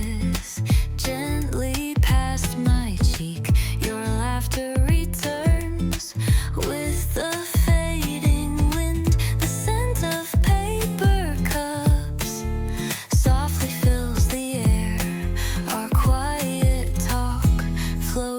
gently past my cheek. Your laughter returns with the fading wind. The scent of paper cups softly fills the air. Our quiet talk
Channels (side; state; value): both; identical; correlation 1.00